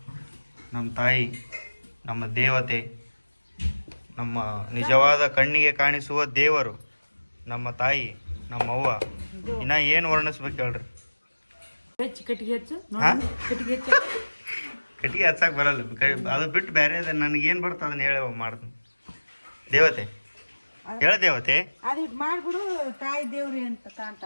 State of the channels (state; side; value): inverted; both; correlation -1.00